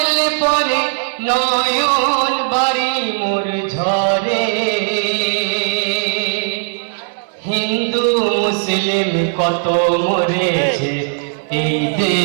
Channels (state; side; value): silent; left; digital silence